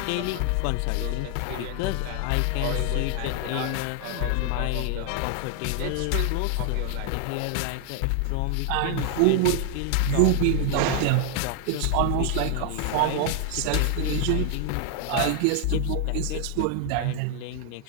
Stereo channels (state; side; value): different; both; correlation 0.00